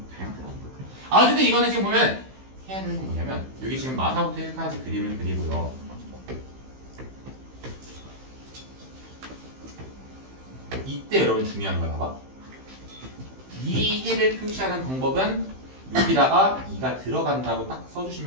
다양하더라고요. 어쨌든 이거는 지금 보면 해야 되는 건 뭐냐면 여기 지금 마사부터 1까지 그림을 그리고요. 이때 여러분 중요한 거야. 봐봐. 이 해를 표시하는 방법은 여기다가 2가 들어간다고 딱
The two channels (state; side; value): late; left; 15 ms